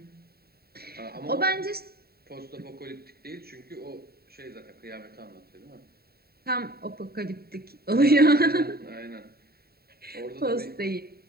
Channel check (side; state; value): left; late; 0.45 ms